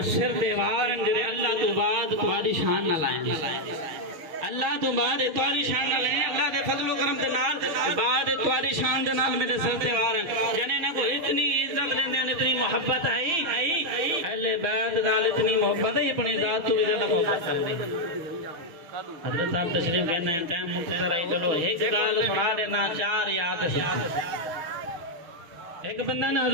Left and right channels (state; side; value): late; left; 6.0 ms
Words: سر دیوار جڑے اللہ تو بعد تمہاری شان نہ لائیں اللہ تو بعد تمہاری شان نہ لائیں اللہ دے فضل و کرم دے نال بعد تمہاری شان دے نال میرے سر دیوار ہیں جنے نے کو اتنی عزت دیندے ہیں اتنی محبت ہے اہل بیت نال اتنی محبت ہے اپنی ذات تو بھی زیادہ محبت کرتے حضرت صاحب تشریف کہنا ہے ٹائم مختصر ہے چلو ایک گل سنا دینا چار یاد ایک بندہ نے